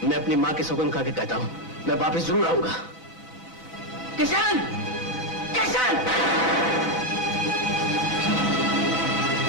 मैं अपनी माँ की सौगंध खा के कहता हूँ, मैं वापस जरूर आऊंगा। किशन! किशन!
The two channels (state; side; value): late; left; 4.0 ms